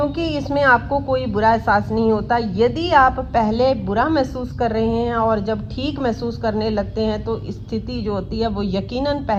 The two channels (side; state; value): both; identical; correlation 1.00